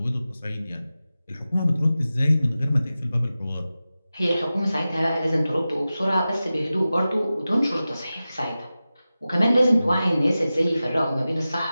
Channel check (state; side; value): inverted; both; correlation -0.95